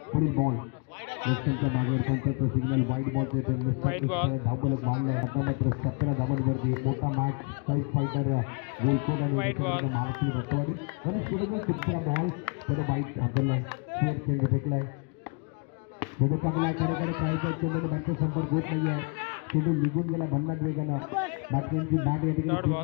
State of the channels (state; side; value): quieter; right; 33.7 dB